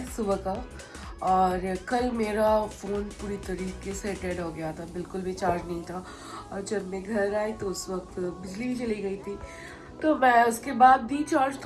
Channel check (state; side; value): identical; both; correlation 1.00